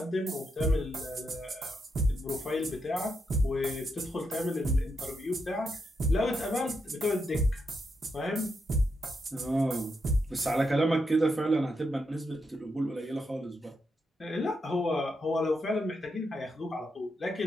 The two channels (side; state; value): both; normal; correlation 0.83